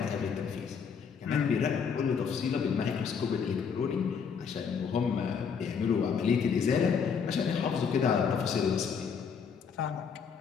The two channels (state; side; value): quieter; right; 6.4 dB